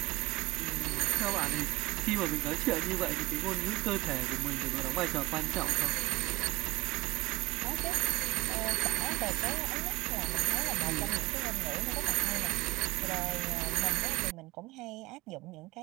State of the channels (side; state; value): left; quieter; 21.1 dB